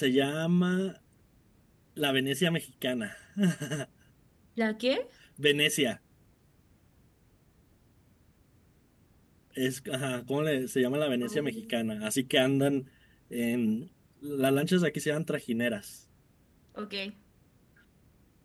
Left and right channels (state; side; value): identical; both; correlation 1.00